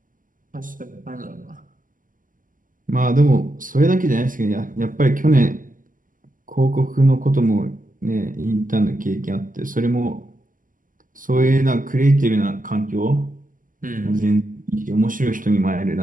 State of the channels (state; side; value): late; left; 0.39 ms